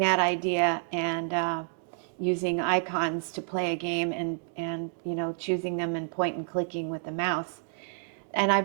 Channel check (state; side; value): silent; left; 58 dB below the other